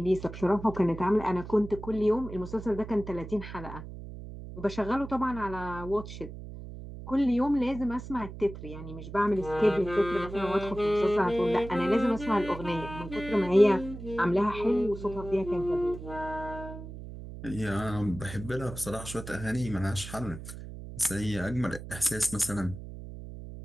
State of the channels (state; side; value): noise; right; hum, 11 dB below the sound